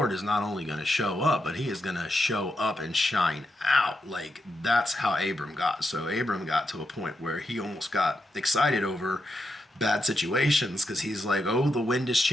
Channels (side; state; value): both; normal; correlation 0.84